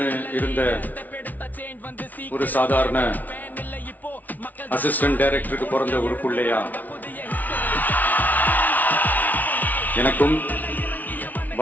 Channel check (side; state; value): right; late; 0.078 ms